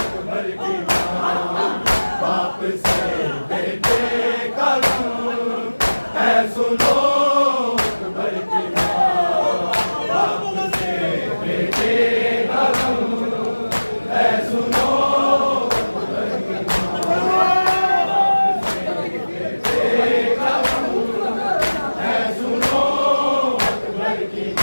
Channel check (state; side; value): inverted; both; correlation -1.00